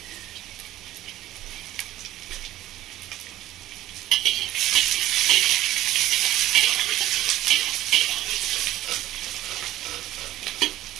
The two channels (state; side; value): quieter; left; 14.7 dB